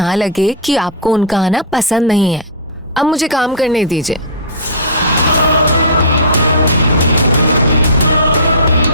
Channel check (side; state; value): both; normal; correlation -0.17